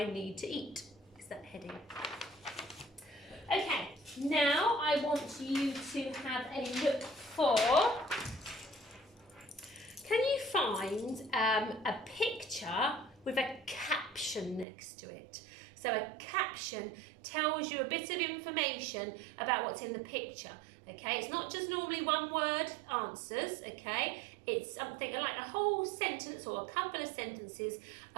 need to eat? Is that heading. Okay, now I want you to have a look for... Can you find a picture with a caption next to it? So a caption tells you a bit of information about what's in the picture, okay? It's not just normally one word answers, okay? It's something like a whole sentence or a couple of sentences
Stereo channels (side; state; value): left; drops out; at 14.7 s